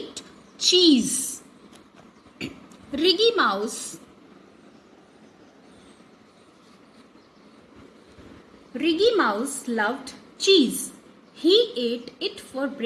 cheese. Ricky Mouse loved cheese. He ate it for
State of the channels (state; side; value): identical; both; correlation 1.00